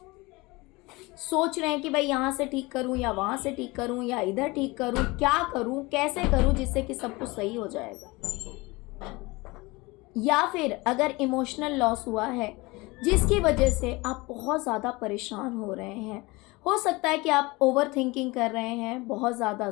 सोच रहे हैं कि भाई यहाँ से ठीक करूँ या वहाँ से ठीक करूँ या इधर ठीक करूँ, क्या करूँ, कैसे करूँ जिससे कि सब कुछ सही हो जाएगा। या फिर अगर इमोशनल लॉस हुआ है जिसकी वजह से आप बहुत ज़्यादा परेशान हो रहे हैं। हो सकता है कि आप ओवर थिंकिंग कर रहे हैं, बहुत ज़्यादा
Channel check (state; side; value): quieter; right; 23.2 dB